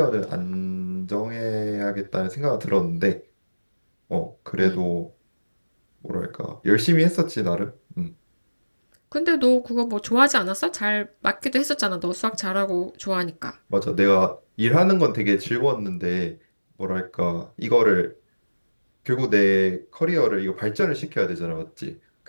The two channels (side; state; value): both; inverted; correlation -1.00